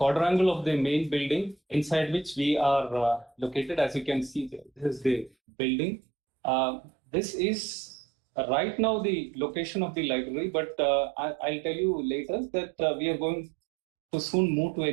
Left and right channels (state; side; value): drops out; left; at 5.3 s